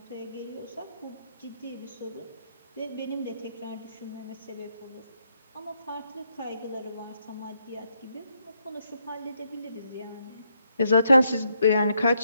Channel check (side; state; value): both; inverted; correlation -0.77